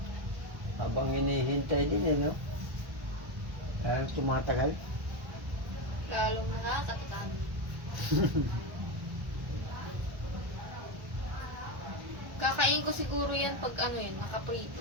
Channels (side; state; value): left; late; 1.1 ms